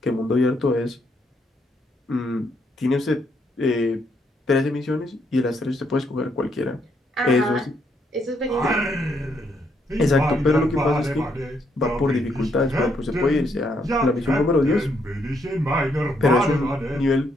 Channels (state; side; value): normal; both; correlation 0.75